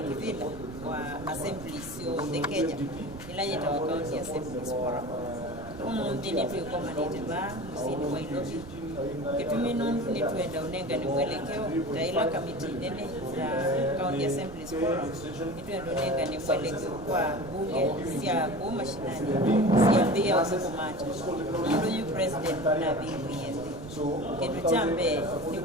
wa Assembly sio the Kenya ila Nyerita wa County Assembly Forum ndini tuikomanite ba musini wa Ilobi kitumi nundu ni tuenda unenga ni mwelekeo taila kamiti nene na County Assembly Forum tuenda unenga ni mwelekeo kwa bunge sia kuma shinani sia mbia usikumata nundu yu president na BBS kitu chambe ni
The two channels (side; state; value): right; noise; rumble, 14 dB below the sound